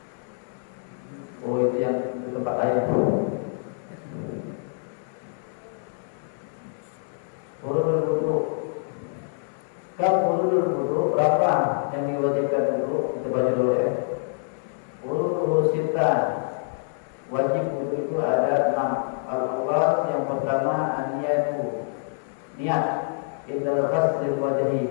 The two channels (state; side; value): silent; right; 61 dB below the other